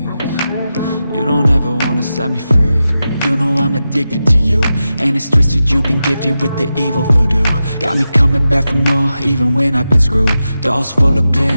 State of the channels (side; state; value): both; inverted; correlation -0.91